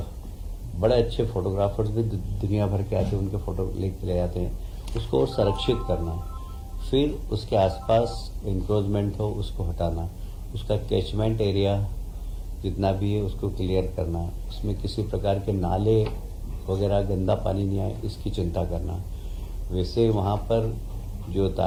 बड़े अच्छे फोटोग्राफर्स भी दुनिया भर के आते हैं, उनके फ़ोटो लेके ले जाते हैं। उसको और संरक्षित करना, फिर उसके आसपास इंक्रोचमेंट हो उसको हटाना, उसका कैचमेंट एरिया जितना भी है उसको क्लियर करना, उसमें किसी प्रकार के नाले वगैरह गंदा पानी नहीं आए इसकी चिंता करना। वैसे वहाँ पर जो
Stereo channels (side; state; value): both; identical; correlation 1.00